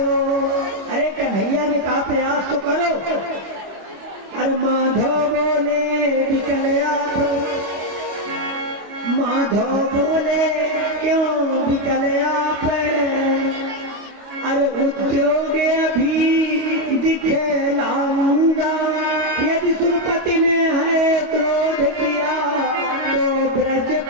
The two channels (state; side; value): late; left; 25 ms